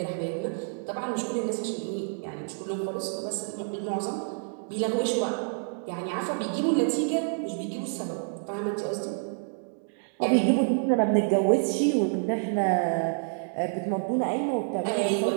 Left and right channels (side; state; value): left; silent; digital silence